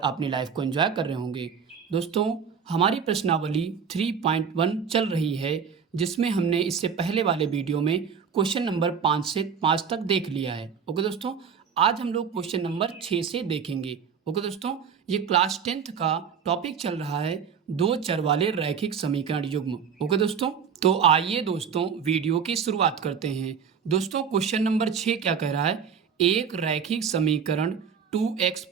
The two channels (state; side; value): quieter; left; 6.9 dB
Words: लाइफ को एंजॉय कर रहे होंगे। दोस्तों, हमारी प्रश्नावली 3.1 चल रही है, जिसमें हमने इससे पहले वाले वीडियो में क्वेश्चन नंबर 5 से 5 तक देख लिया है। ओके दोस्तों, आज हम लोग क्वेश्चन नंबर 6 से देखेंगे। ओके दोस्तों, ये क्लास 10th का टॉपिक चल रहा है दो चर वाले रैखिक समीकरण युग्म। ओके दोस्तों, तो आइए दोस्तों वीडियो की शुरुआत करते हैं। दोस्तों, क्वेश्चन नंबर 6 क्या कह रहा है? एक रैखिक समीकरण 2x